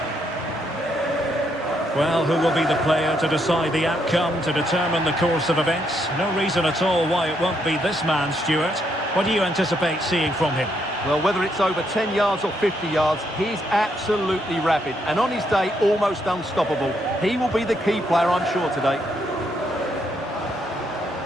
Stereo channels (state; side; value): normal; both; correlation 0.76